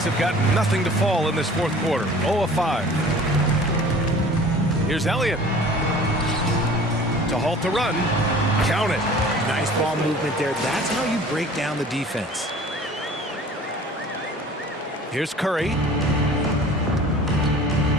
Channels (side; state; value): both; normal; correlation 0.46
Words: have got nothing to fall in this fourth quarter. 0 of 5. Here's Elliott. To halt the run. Count it. Nice ball movement there. That's how you break down the defense. Here's Curry.